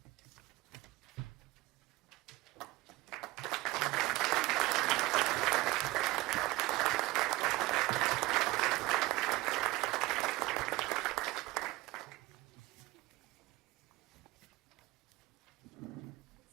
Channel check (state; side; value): quieter; left; 20.3 dB